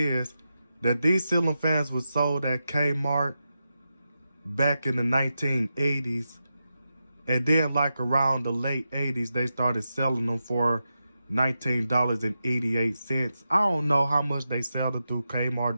that these ceiling fans were sold at Kmart back in the 1980s. And then, like, around the late 80s, they started selling them for $19.88. I don't know how much they sell it through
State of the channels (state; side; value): inverted; both; correlation -0.89